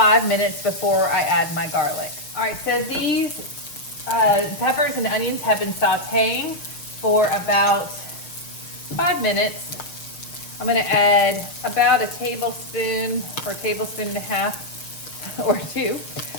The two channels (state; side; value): late; right; 6.4 ms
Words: minutes before I add my garlic. All right, so these peppers and onions have been sauteing for about 5 minutes. I'm gonna add about a tablespoon or a tablespoon and a half or two